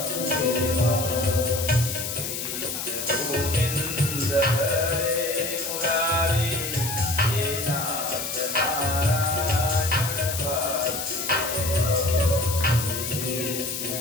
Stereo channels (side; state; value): left; noise; hiss, 4 dB below the sound